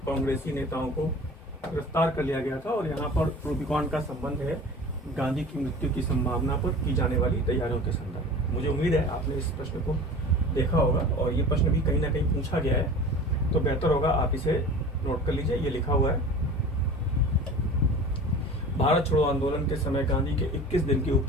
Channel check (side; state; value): both; normal; correlation 0.38